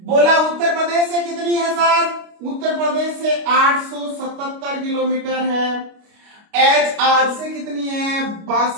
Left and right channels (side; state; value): left; late; 29 ms